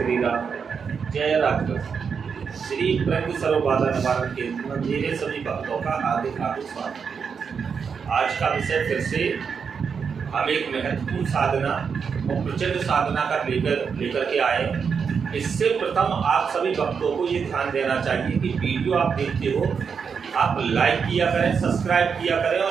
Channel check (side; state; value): left; quieter; 6.2 dB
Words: राम। जय राम। श्री प्रज्ञ सर्वबाधा निवारण केंद्र में मेरे सभी भक्तों का हार्दिक हार्दिक स्वागत। आज का विषय फिर से हम एक महत्वपूर्ण साधना और प्रचंड साधना का लेकर के आए। इससे प्रथम आप सभी भक्तों को ये ध्यान देना चाहिए कि वीडियो आप देखते हो, आप लाइक किया करें, सब्सक्राइब किया करें